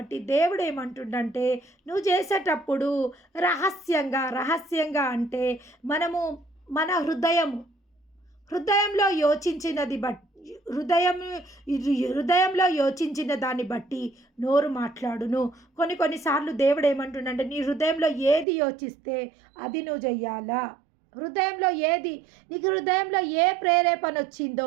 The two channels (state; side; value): drops out; left; at 18.4 s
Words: దేవుడు ఏమంటుండంటే, నువ్వు చేసేటప్పుడు రహస్యంగా అంటే మనము మన హృదయంలో యోచించినది బట్టి, హృదయంలో యోచించిన దాన్ని బట్టి నోరు మాట్లాడును. కొన్నిసార్లు దేవుడు ఏమంటుండంటే, నీ హృదయంలో ఏది యోచిస్తే అది నువ్వు చెయ్యాలా. నీకు హృదయంలో ఏ ప్రేరేపణ